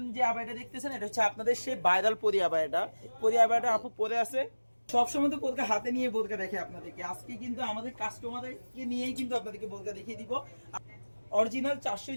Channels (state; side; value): inverted; both; correlation -1.00